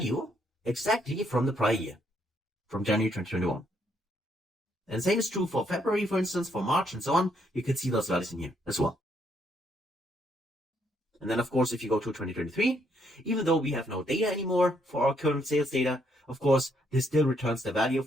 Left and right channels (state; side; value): normal; both; correlation 0.73